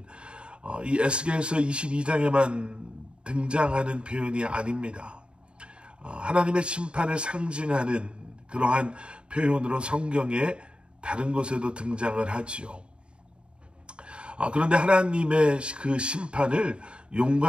이 에스겔서 22장에만 등장하는 표현이 아닙니다. 하나님의 심판을 상징하는 그러한 표현으로 성경에 다른 곳에도 등장을 하지요. 그런데 하나님의 그 심판을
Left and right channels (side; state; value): left; late; 0.054 ms